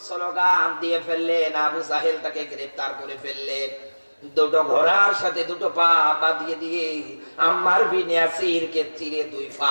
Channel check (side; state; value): both; inverted; correlation -1.00